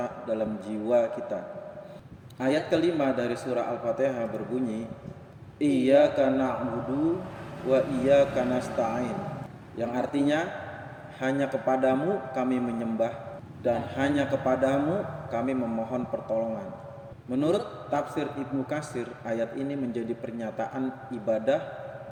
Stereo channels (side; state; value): both; identical; correlation 1.00